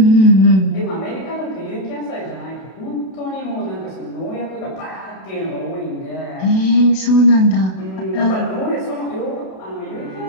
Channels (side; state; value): right; late; 32 ms